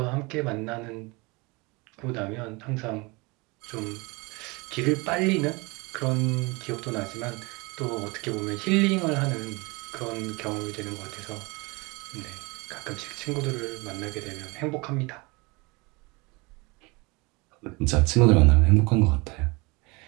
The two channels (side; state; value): left; quieter; 26.1 dB